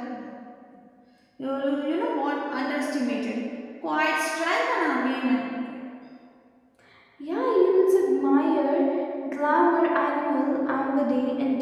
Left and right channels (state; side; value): identical; both; correlation 1.00